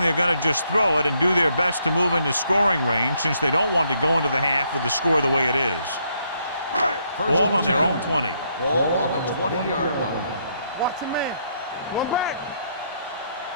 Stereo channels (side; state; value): both; inverted; correlation -0.73